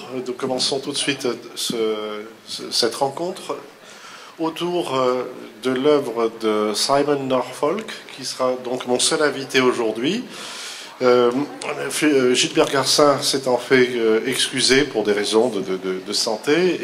Nous commençons tout de suite cette rencontre autour de l'œuvre de Simon Norfolk, qui sera donc mon seul invité aujourd'hui. Gilbert Garcin s'est en fait excusé pour des raisons de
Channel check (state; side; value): identical; both; correlation 1.00